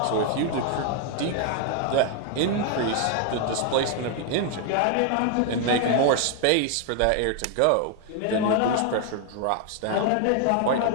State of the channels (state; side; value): different; both; correlation 0.01